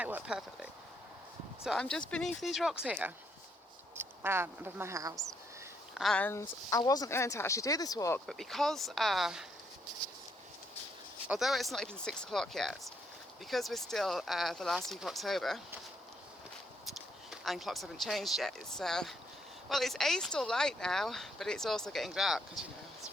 work perfectly. So I'm just beneath these rocks here, above my house, and I wasn't going to actually do this walk, but because, although it's not even 6 o'clock yet, because we're still the last week of October, and clocks haven't changed yet, it's... well, it's still light now, but it's also getting dark because, you know, it's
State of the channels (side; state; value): both; normal; correlation 0.73